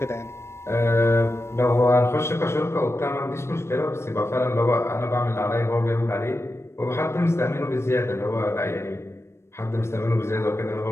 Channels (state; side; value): late; right; 0.13 ms